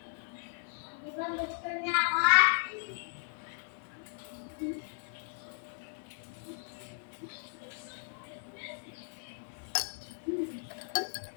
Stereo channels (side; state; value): right; silent; digital silence